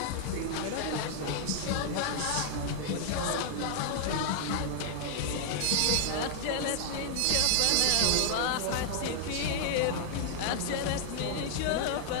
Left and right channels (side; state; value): both; different; correlation -0.01